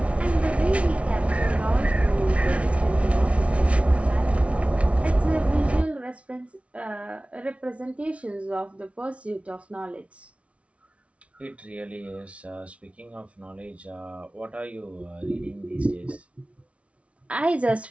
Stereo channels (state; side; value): late; left; 0.063 ms